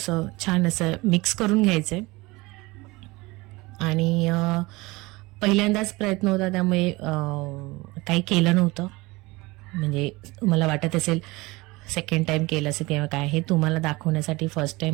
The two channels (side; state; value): left; quieter; 22.3 dB